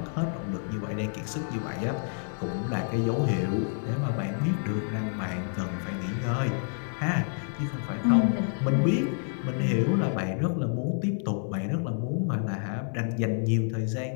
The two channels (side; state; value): right; silent; 58 dB below the other